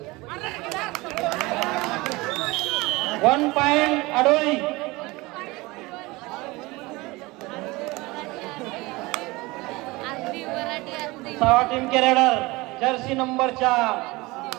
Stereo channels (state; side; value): quieter; left; 22.3 dB